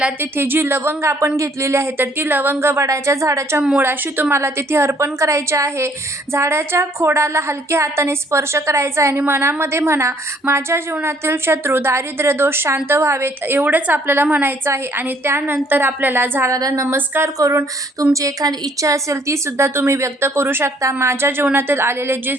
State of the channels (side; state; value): both; normal; correlation 0.62